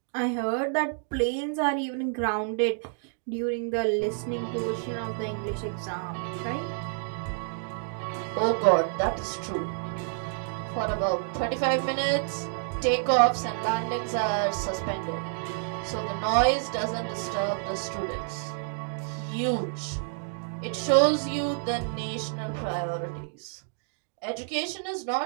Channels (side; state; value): left; silent; digital silence